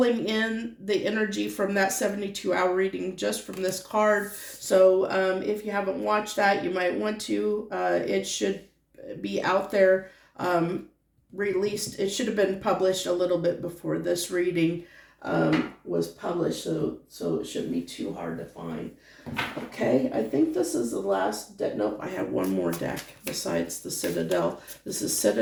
in the energy from that 72-hour reading just from this card. So if you haven't watched that, you might want to. It should be out there, released. It should have been published a little bit before this reading was published, so it shouldn't be too hard to find. Okay, I think this is the last deck. Nope, I have one more deck besides the Citadel. This is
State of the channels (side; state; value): both; identical; correlation 1.00